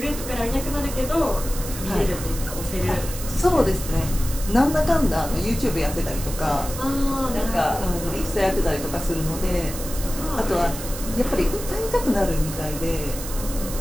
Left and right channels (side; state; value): right; noise; hiss, 10 dB below the sound